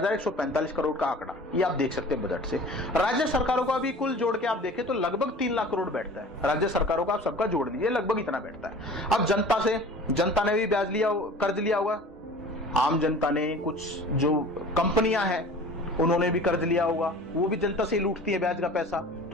करोड़ का आंकड़ा, ये आप देख सकते हैं बजट से। राज्य सरकारों का भी कुल जोड़ के आप देखें तो लगभग 3 लाख करोड़ बैठता है। राज्य सरकारों का आप सबका जोड़ दीजिए, लगभग इतना बैठता है। अब जनता ने भी ब्याज लिया, कर्ज लिया होगा। आम जनता ने, कुछ जो कंपनियां हैं उन्होंने भी कर्ज लिया होगा, वो भी जनता से लूटती है ब्याज का पैसा।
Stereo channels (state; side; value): normal; both; correlation 0.42